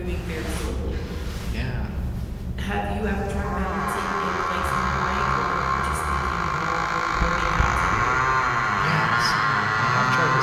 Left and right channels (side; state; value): both; identical; correlation 1.00